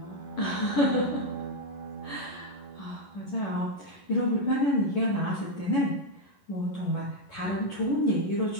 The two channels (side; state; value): right; late; 11 ms